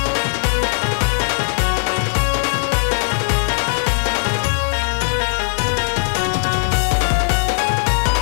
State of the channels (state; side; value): silent; right; digital silence